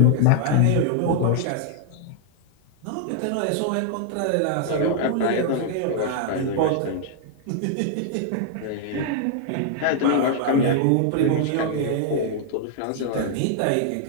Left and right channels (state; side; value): different; both; correlation -0.01